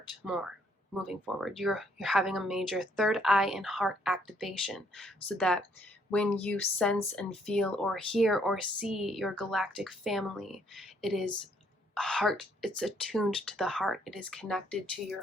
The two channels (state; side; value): normal; both; correlation 0.68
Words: more moving forward. You're having a major third eye and heart activation, so that when you sense and feel or hear or see your galactic family, it is heart, it's attuned to the heart, it is connected to your